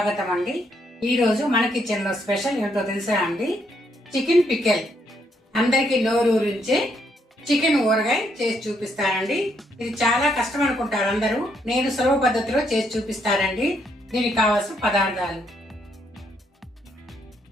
అండి. ఈ రోజు మన కిచెన్ లో స్పెషల్ ఏంటో తెలుసా అండి? Chicken pickle. అందరికి నోరూరించే చికెన్ ఊరగాయ చేసి చూపిస్తానండి. ఇది చాలా కష్టం అనుకుంటారు అందరూ. నేను సులభ పద్ధతిలో చేసి చూపిస్తానండి. దీనికి కావాల్సిన పదార్థాలు:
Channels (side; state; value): both; normal; correlation 0.74